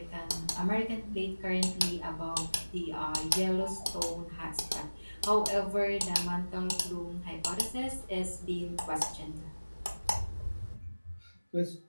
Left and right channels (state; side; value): inverted; both; correlation -1.00